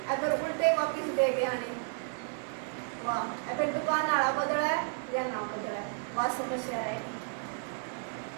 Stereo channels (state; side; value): silent; left; 56 dB below the other